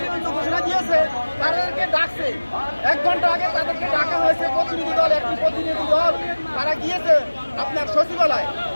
ঘোষণা দিয়েছে, তাদেরকে ডাকছে 1 ঘন্টা আগে তাদেরকে ডাকা হয়েছে প্রতিনিধি দল, একটি প্রতিনিধি দল তারা গিয়েছে আপনার সচিবালয়।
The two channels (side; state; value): both; inverted; correlation -1.00